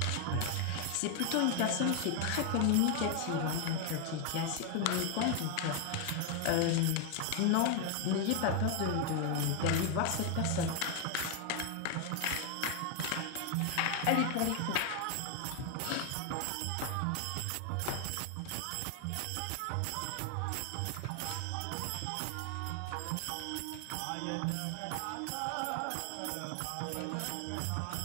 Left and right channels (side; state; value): both; different; correlation 0.01